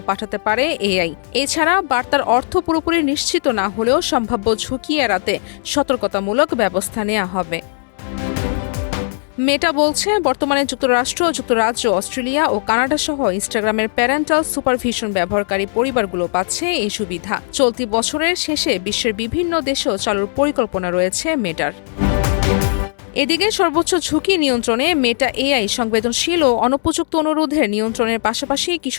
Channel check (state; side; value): silent; right; 66 dB below the other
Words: পাঠাতে পারে এআই। এছাড়া বার্তার অর্থ পুরোপুরি নিশ্চিত না হলেও সম্ভাব্য ঝুঁকি এড়াতে সতর্কতামূলক ব্যবস্থা নেওয়া হবে। মেটা বলছে, বর্তমানে যুক্তরাষ্ট্র, যুক্তরাজ্য, অস্ট্রেলিয়া ও কানাডা সহ ইনস্টাগ্রামের প্যারেন্টাল সুপারভিশন ব্যবহারকারী পরিবারগুলো পাচ্ছে এই সুবিধা। চলতি বছরের শেষে বিশ্বের বিভিন্ন দেশেও চালুর পরিকল্পনা রয়েছে মেটার। এদিকে সর্বোচ্চ ঝুঁকি নিয়ন্ত্রণে মেটা এআই সংবেদনশীল ও অনুপযুক্ত অনুরোধের নিয়ন্ত্রণের পাশাপাশি